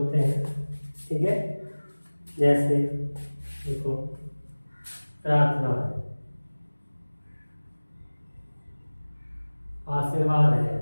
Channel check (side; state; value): both; inverted; correlation -1.00